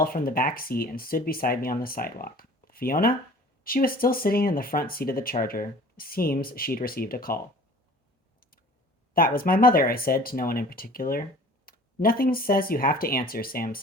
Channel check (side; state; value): both; normal; correlation 0.47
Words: from the back seat and stood beside me on the sidewalk. Fiona? She was still sitting in the front seat of the Charger. Seems she'd received a call. That was my mother, I said to no one in particular. Nothing says you have to answer, Sam